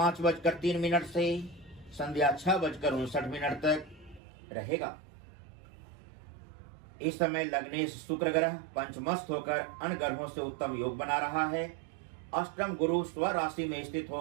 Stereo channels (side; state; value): left; drops out; at 4.2 s